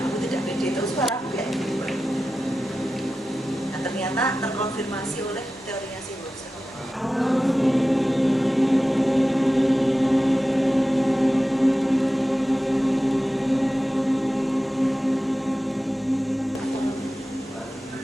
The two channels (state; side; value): normal; both; correlation 0.94